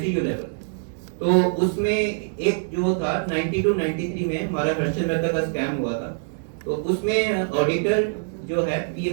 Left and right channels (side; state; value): left; silent; digital silence